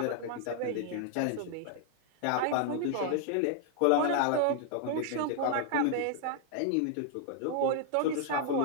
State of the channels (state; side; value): different; both; correlation 0.00